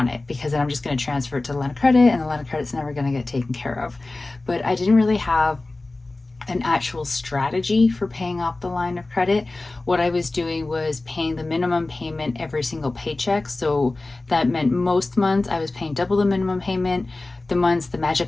it, because then I'm just going to transfer it to the line of credit and the line of credit's never going to get taken care of. But I didn't really have an actual strategy for paying off the line of credit. What I was doing was paying the minimum payment every single paycheck. So that meant most months I was paying double the minimum payment. The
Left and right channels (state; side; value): quieter; right; 3.1 dB